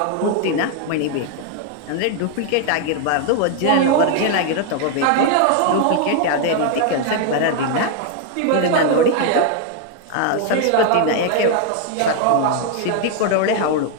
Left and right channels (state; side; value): different; both; correlation 0.00